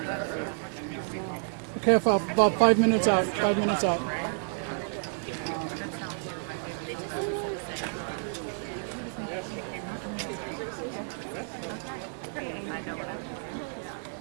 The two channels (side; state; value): left; silent; 58 dB below the other